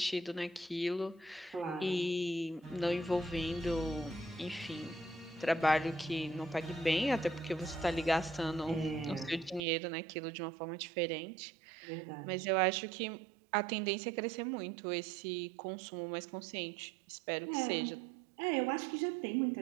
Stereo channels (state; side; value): drops out; left; at 9.6 s